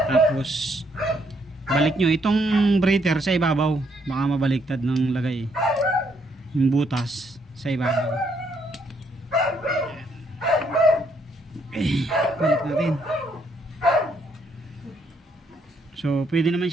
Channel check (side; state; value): both; normal; correlation 0.72